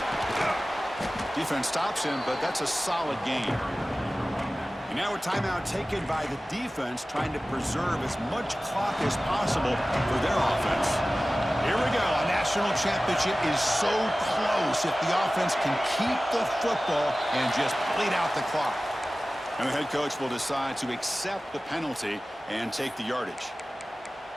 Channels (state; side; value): normal; both; correlation 0.97